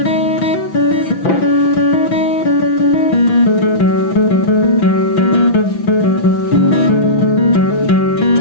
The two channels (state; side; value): late; right; 6.0 ms